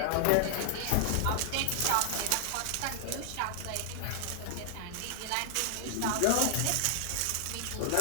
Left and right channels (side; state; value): both; different; correlation 0.00